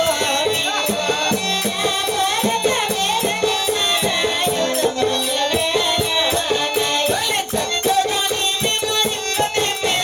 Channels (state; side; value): identical; both; correlation 1.00